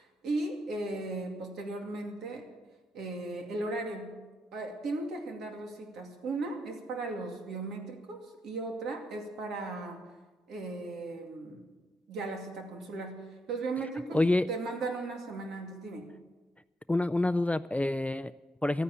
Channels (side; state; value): both; normal; correlation 0.80